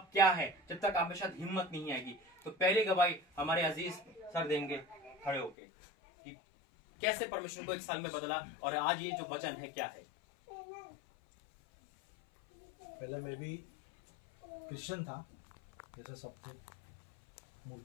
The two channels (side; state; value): right; drops out; at 5.6 s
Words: क्या है, जब तक आप में शायद हिम्मत नहीं आएगी। तो पहली गवाही हमारे अजीज सर देंगे खड़े होके कि कैसे परमेश्वर को एक साल में बदला और आज ये जो वचन है क्या है। पहले मैं भी क्रिश्चियन था, जैसे सबको।